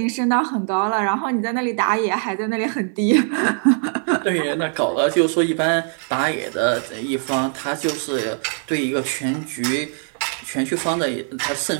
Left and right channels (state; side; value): silent; left; 58 dB below the other